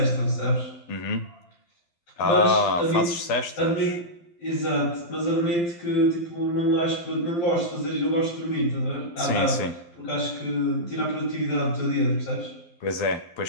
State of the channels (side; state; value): right; late; 12 ms